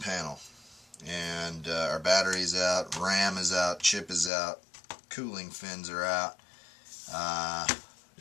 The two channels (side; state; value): right; drops out; at 4.3 s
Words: and our battery's out, RAM is out, chip is out, cooling fins are out,